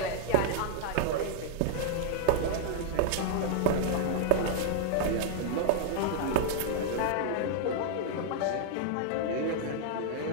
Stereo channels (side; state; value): both; different; correlation -0.01